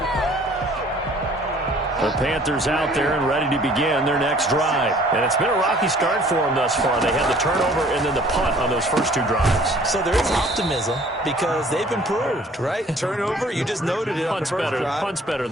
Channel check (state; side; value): normal; both; correlation 0.54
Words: The Panthers out there and ready to begin their next drive. And it's been a rocky start for them thus far. They had the turnover and then the punt on those first 2 drives. So there is optimism because they've improved, right? Turnover, you just noted it on the first drive. Punt's better